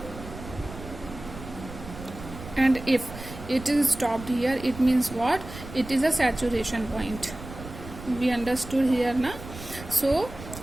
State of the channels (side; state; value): right; noise; rumble, 13 dB below the sound